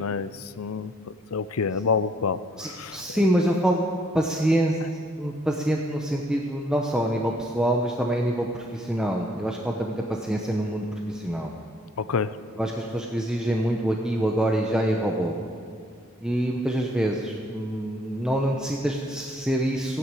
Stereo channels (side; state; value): both; normal; correlation 0.66